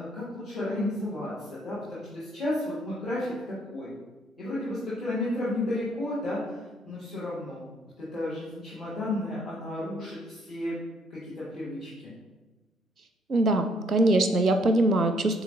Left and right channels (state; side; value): normal; both; correlation 0.67